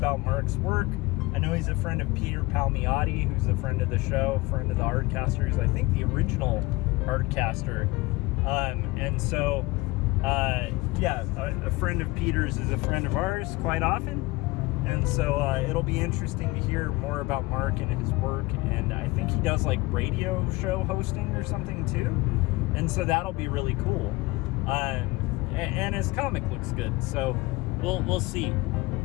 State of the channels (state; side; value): quieter; right; 22.1 dB